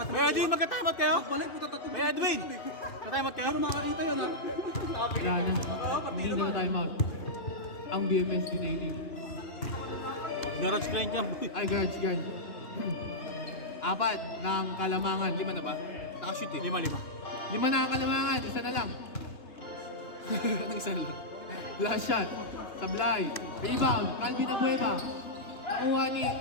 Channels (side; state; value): right; late; 2.9 ms